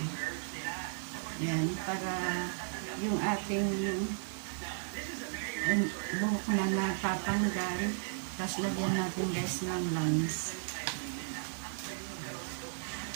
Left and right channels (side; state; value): left; silent; 54 dB below the other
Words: Yan, para yung ating buhok na napapanggal. Tapos lagyan natin guys ng lines.